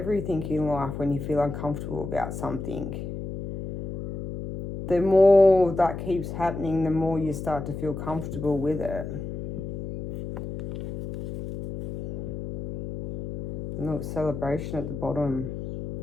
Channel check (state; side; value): noise; left; hum, 7 dB below the sound